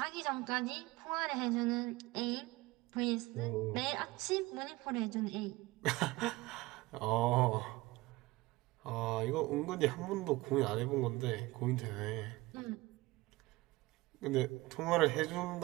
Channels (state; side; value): quieter; left; 20.7 dB